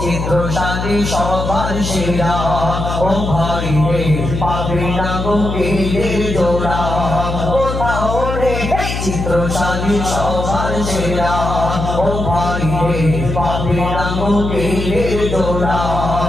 চিত্রশালী সবার সেরা ও ভাই রে পাবি না গোকিলের জোড়া কোথাও রে এই চিত্রশালী সবার সেরা ও ভাই রে পাবি না গোকিলের জোড়া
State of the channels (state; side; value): noise; left; hum, 4 dB below the sound